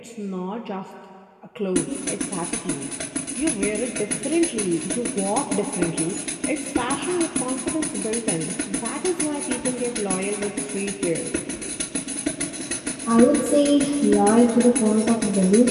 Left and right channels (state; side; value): identical; both; correlation 1.00